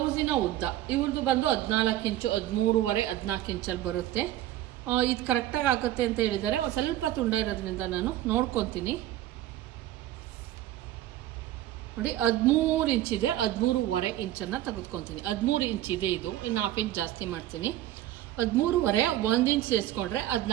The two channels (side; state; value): left; quieter; 13.7 dB